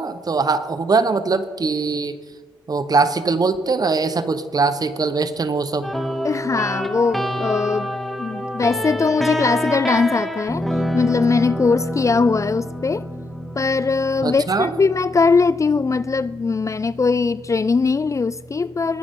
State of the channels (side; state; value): both; normal; correlation 0.75